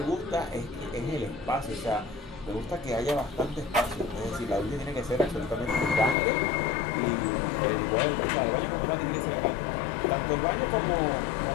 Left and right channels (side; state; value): right; drops out; at 6.2 s